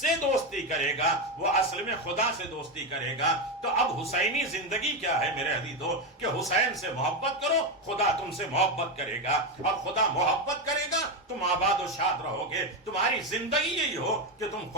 دوستی کرے گا وہ اصل میں خدا سے دوستی کرے گا۔ تو اب حسینی زندگی کیا ہے میرے عزیزو، کہ حسین سے محبت کرو، خدا تم سے محبت کرے گا، اور خدا محبت کرے گا تم آباد و شاد رہو گے۔ تمہاری زندگی یہی ہو کہ تم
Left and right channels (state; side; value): normal; both; correlation 0.11